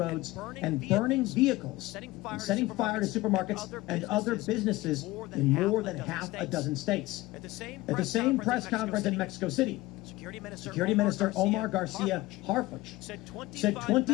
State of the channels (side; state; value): right; quieter; 19.0 dB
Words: and burning vehicles and setting fire to supermarkets and other businesses in more than half a dozen states. At the same press conference in Mexico City, Security Minister Omar Garcia Harfuch said